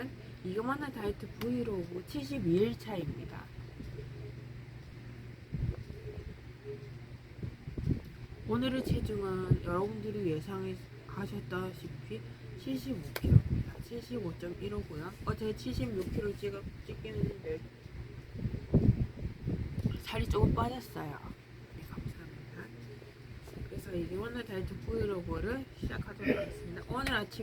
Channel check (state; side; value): identical; both; correlation 1.00